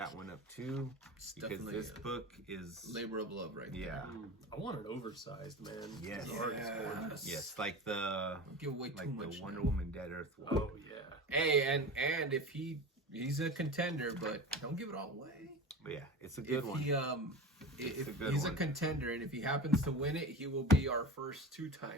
one up too, because this book is labor of love, right? Yeah. I want an oversized, man. Yes. Yes. Like the give away too much. The Wonder Woman Dead Earth one. Oh yeah. Hey, and if he's a contender, but don't give it all away. But yeah, it's a good one. If he's a contender, and if he happens to win it, he will be our first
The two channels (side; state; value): both; normal; correlation 0.30